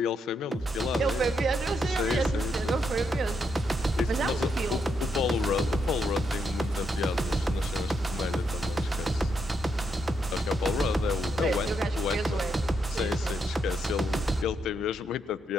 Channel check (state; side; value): normal; both; correlation 0.79